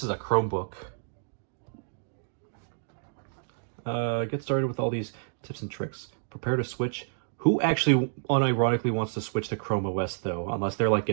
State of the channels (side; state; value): left; silent; digital silence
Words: is a Chromebook. Get started with all these tips and tricks. Prepare to switch. Who actually unironically wants to switch to Chrome OS though? Unless they're like